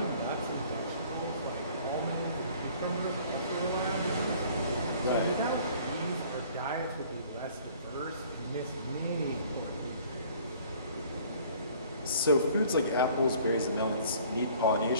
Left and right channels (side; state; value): both; inverted; correlation -0.54